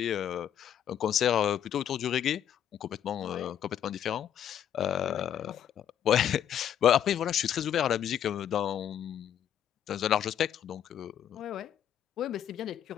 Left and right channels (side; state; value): right; quieter; 9.9 dB